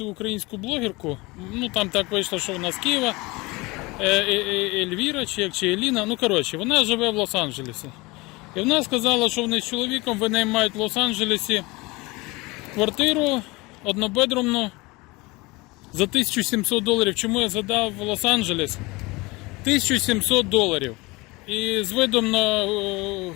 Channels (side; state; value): right; quieter; 23.7 dB